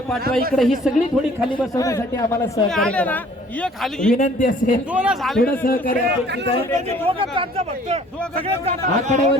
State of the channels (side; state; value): both; normal; correlation 0.55